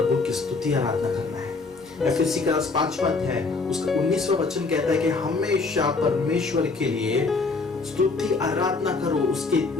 की स्तुति आराधना करना है। एफएससी का 5वां अध्याय उसका 19वां वचन कहता है कि हमेशा परमेश्वर के लिए स्तुति आराधना करो,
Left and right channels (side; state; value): right; quieter; 4.0 dB